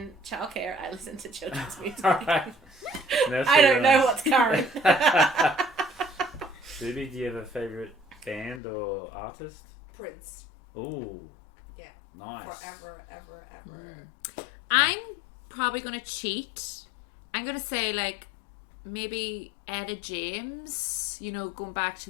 childcare, I listened to children's music. All right. That's I don't very know nice. what's current. Boobie, do you have a favorite band or artist? Prince. Ooh. Yeah. Nice. Forever, ever, ever. I'm probably going to cheat. I'm going to say, like, maybe Etta James, you know, going back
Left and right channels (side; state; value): right; drops out; at 8.6 s